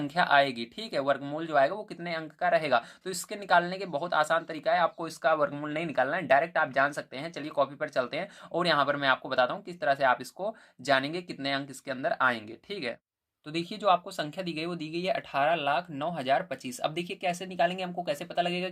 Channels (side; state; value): both; identical; correlation 1.00